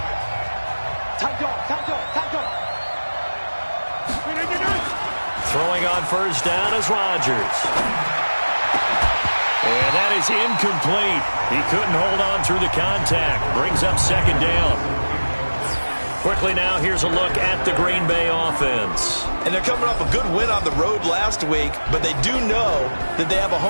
Throwing on first down is Rodgers. And that is incomplete. He couldn't hold on through the contact. Brings up second down. Quickly now, here's a look at the Green Bay offense. And they're coming off a good win on the road last week, but they do know that they have a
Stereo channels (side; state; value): both; inverted; correlation -1.00